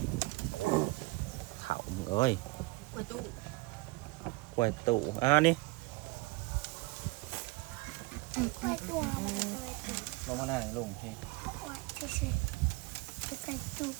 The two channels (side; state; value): left; quieter; 23.5 dB